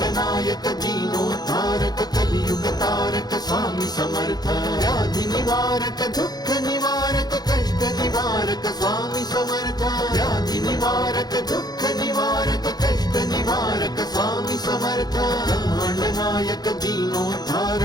नायक दीनोद्धारक कलियुग तारक स्वामी समर्थ। व्याधि निवारक दुःख निवारक कष्ट निवारक स्वामी समर्थ। व्याधि निवारक दुःख निवारक कष्ट निवारक स्वामी समर्थ। ब्रह्मांड नायक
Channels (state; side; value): late; right; 0.19 ms